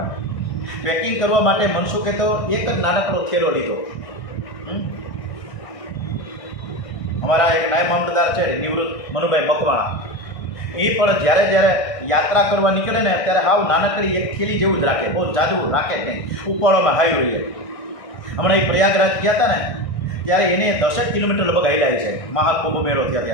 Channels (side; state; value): right; late; 1.6 ms